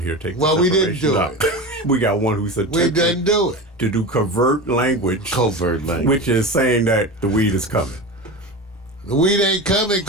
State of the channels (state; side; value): normal; both; correlation 0.27